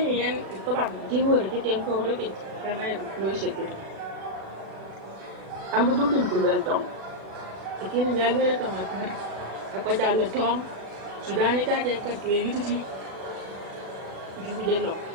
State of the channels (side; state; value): left; late; 36 ms